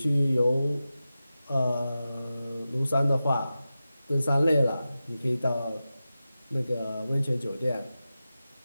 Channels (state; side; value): inverted; both; correlation -0.93